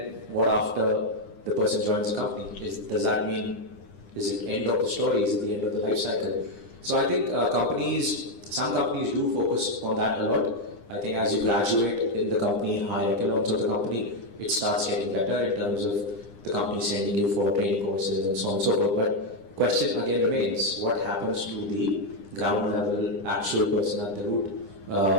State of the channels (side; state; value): right; late; 9.9 ms